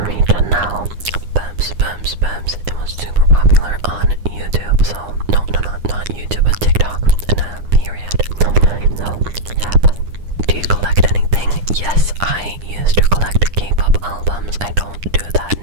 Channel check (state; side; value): late; left; 9.9 ms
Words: now. Bubs. It was super popular on YouTube, so not YouTube, but TikTok, and period. No, yeah, but do you collect anything? Yes, I used to collect K-pop albums. I don't do that